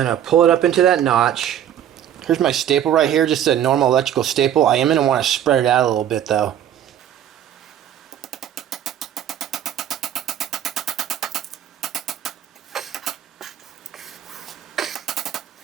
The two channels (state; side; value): quieter; left; 10.3 dB